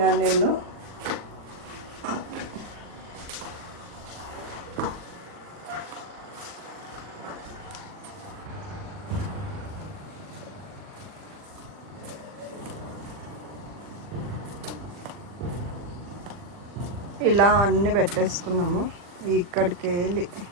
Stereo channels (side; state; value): left; late; 40 ms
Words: నేను. ఇలా అన్నీ పెట్టేసుకున్నాము. ఇక్కడికి వెళ్ళి